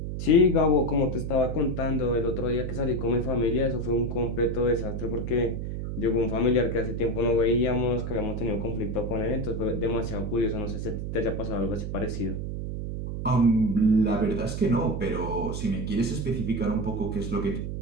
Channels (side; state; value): right; noise; hum, 4 dB below the sound